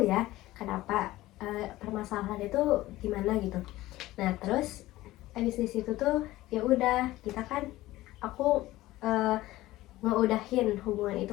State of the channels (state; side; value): quieter; right; 16.9 dB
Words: ya kenapa permasalahan itu gimana gitu. Nah terus abis di situ tuh ya udah kita kan aku ngeudahin hubungan